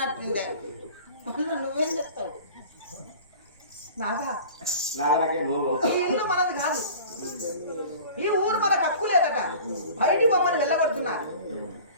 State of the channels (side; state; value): both; inverted; correlation -0.42